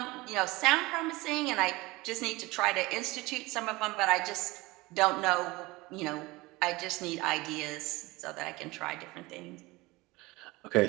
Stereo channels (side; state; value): left; quieter; 21.7 dB